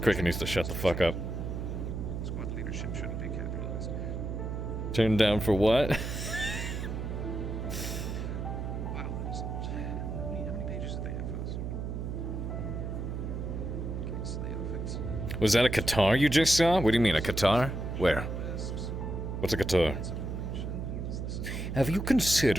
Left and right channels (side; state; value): right; noise; hum, 4 dB below the sound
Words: needs to shut the fuck up. Squad leadership shouldn't be capitalized. Turned down for what? Wow, that is how many pages did they have for this? Okay, so the outfits. Was that a guitar you just saw? What do you mean, a guitar? Where? What's a guitar? Have you